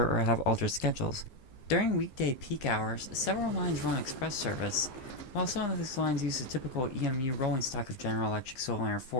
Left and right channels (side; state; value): right; late; 15 ms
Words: or have altered schedules. During weekday peak hours, several lines run express service. While some of these lines use the typical EMU rolling stock of General Electric Silverliner